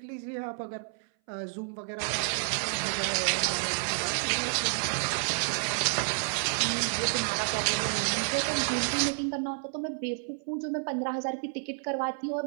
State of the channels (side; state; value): left; silent; 58 dB below the other